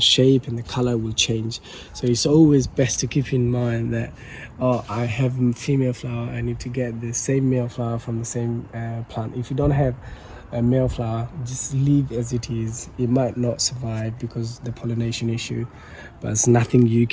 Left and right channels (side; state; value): both; identical; correlation 1.00